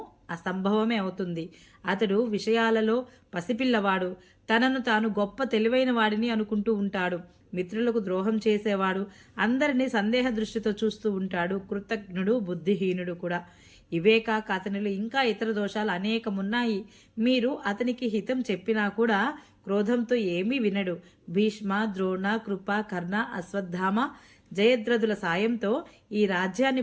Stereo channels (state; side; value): identical; both; correlation 1.00